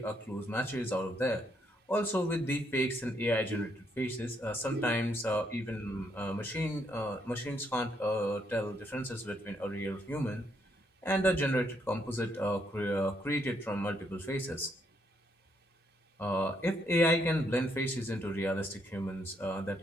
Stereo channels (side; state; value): both; normal; correlation 0.74